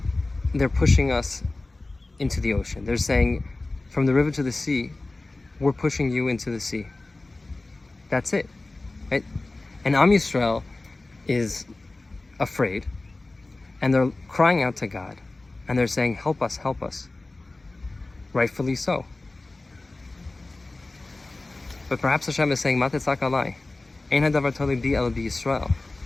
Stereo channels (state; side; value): quieter; right; 3.1 dB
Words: they're pushing us into the ocean. They're saying, from the river to the sea, we're pushing you into the sea. That's it. Right? And Am Yisrael is afraid, and they're crying out to God, and they're saying, help us, help us. Rightfully so. But perhaps Hashem is saying, Matetzak alai, ein hadavar toli bi el bi Yisrael.